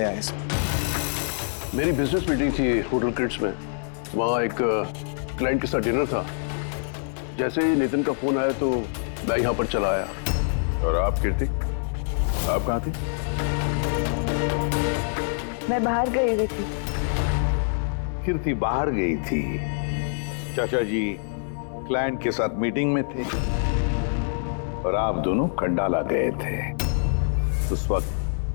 आए। मेरी बिजनेस मीटिंग थी होटल क्रिट्स में, वहाँ एक क्लाइंट के साथ डिनर था। जैसे ही नितिन का फोन आया तो मैं यहाँ पर चला आया। और आप कीर्ति, आप कहाँ थी? मैं बाहर गई हुई थी। कीर्ति बाहर गई थी, चाचा जी क्लाइंट के साथ मीटिंग में थे और आप दोनों खंडाला गए थे। उस वक्त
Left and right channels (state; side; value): silent; right; 62 dB below the other